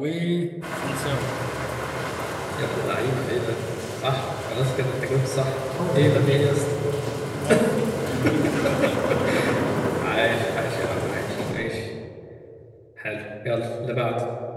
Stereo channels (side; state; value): both; identical; correlation 1.00